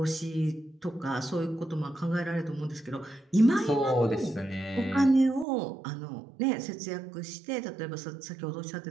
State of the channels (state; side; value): drops out; left; at 5.5 s